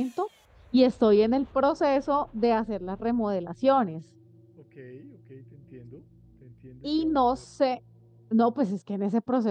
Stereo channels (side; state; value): both; identical; correlation 1.00